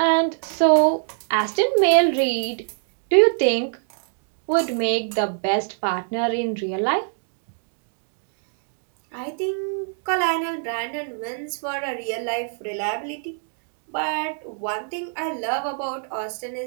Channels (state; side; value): silent; left; 62 dB below the other